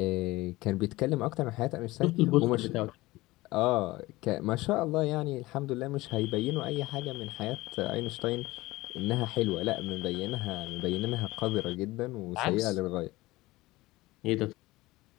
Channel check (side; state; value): right; quieter; 19.5 dB